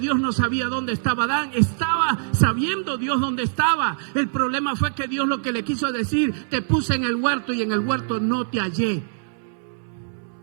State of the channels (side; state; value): left; silent; 63 dB below the other